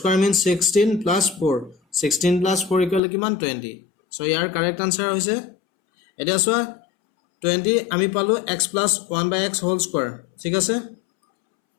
means 16 plus 4 16 plus 4 equal to কিমান 20 so ইয়াৰ correct answer হৈছে এটা সো 20 আমি পালো x plus 1/x whole square ঠিক আছে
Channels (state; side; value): drops out; right; at 3.0 s